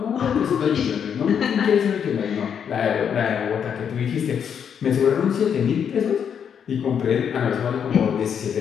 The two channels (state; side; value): quieter; right; 7.8 dB